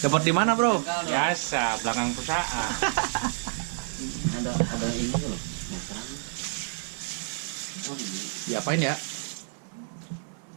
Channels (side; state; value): left; silent; 59 dB below the other